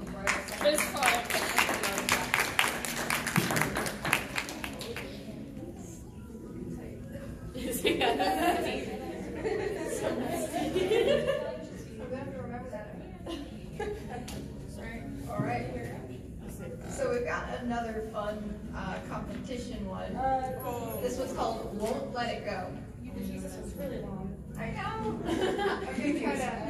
bridal This part. I'm gonna have to remember that. Sorry. All right. So we've got another fun competition one. This one's called "Won't Let It Go." Jesus, it's really long. I know. I'm gonna try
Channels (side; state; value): both; identical; correlation 1.00